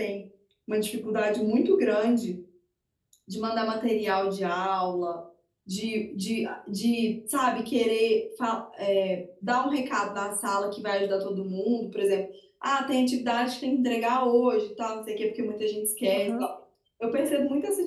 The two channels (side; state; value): both; identical; correlation 1.00